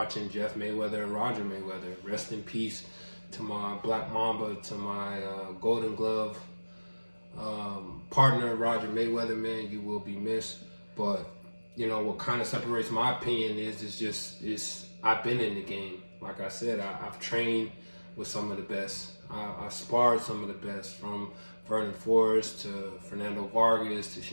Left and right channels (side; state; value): both; inverted; correlation -1.00